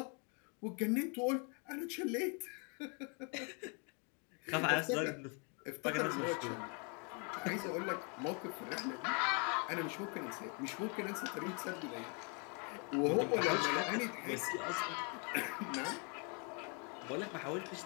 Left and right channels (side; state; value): right; quieter; 36.2 dB